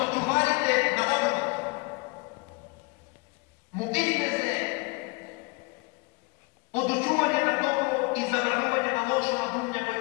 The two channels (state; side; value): quieter; right; 27.9 dB